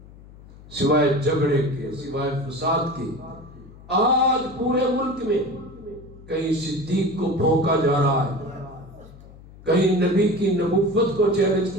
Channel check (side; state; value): left; noise; hum, 20 dB below the sound